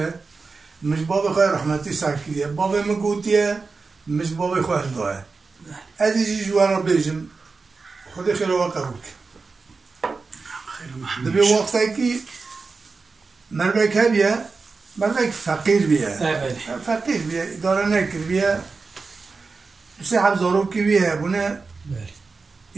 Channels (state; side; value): quieter; left; 4.4 dB